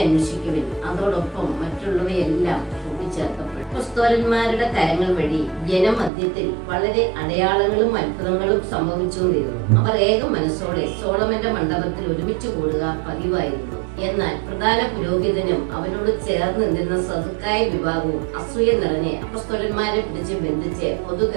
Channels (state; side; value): drops out; left; at 6.1 s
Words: അന്വേഷിക്കുവിൻ, അതോടൊപ്പം മറ്റുള്ളവയെല്ലാം കൂട്ടിച്ചേർക്കപ്പെടും. അപ്പോസ്തലന്മാരുടെ കരങ്ങൾ വഴി ജനമധ്യത്തിൽ വളരെ അടയാളങ്ങളും അത്ഭുതങ്ങളും സംഭവിച്ചുകൊണ്ടിരുന്നു. അവർ ഏക മനസ്സോടെ സോളമന്റെ മണ്ഡപത്തിൽ ഒരുമിച്ച് കൂടുക പതിവായിരുന്നു. എന്നാൽ പ്രധാന പുരോഹിതനും അവനോട് ചേർന്ന് നിന്നിരുന്ന സദുക്കായ വിഭാഗവും അസൂയ നിറഞ്ഞ് അപ്പോസ്തലന്മാരെ പിടിച്ച് ബന്ധിച്ച് പൊതു